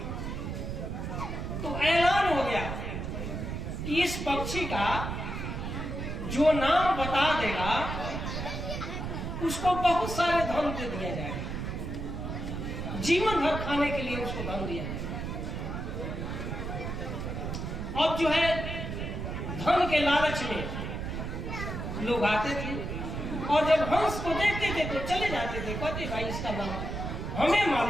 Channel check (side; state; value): right; noise; rumble, 4 dB below the sound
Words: तो ऐलान हो गया कि इस पक्षी का जो नाम बता देगा उसको बहुत सारे धन दे दिया जाएगा, जीवन भर खाने के लिए उसको धन दिया जाएगा। अब जो है धन के लालच में लोग आते थे और जब हंस को देखते थे तो चले जाते थे, कहते भाई इसका नाम हमें